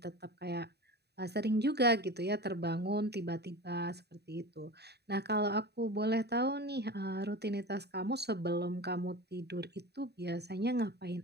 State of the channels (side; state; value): left; late; 0.48 ms